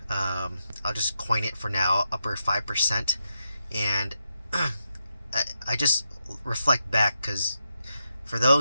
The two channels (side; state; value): both; inverted; correlation -0.85